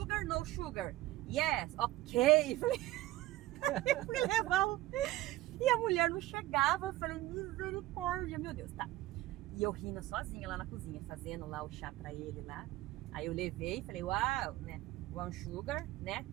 no sugar. Yes, ok. Eu fui levar e a mulher não chegava. Eu falei, misericórdia, meu Deus, tá. E eu rindo sozinha lá na cozinha, fazendo lá o chá pra ele lá. Aí eu levei e falei, uau, né? One sugar, né?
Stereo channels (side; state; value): left; quieter; 16.8 dB